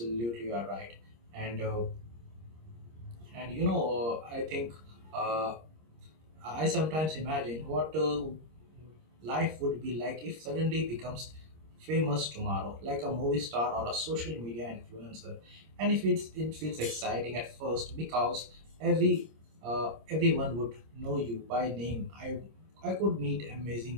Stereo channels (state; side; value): late; left; 26 ms